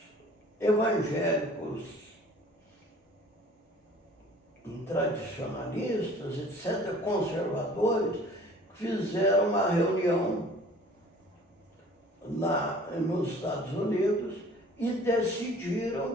evangélicos tradicionalistas, etc., conservadores, fizeram uma reunião lá nos Estados Unidos e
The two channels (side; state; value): both; normal; correlation 0.50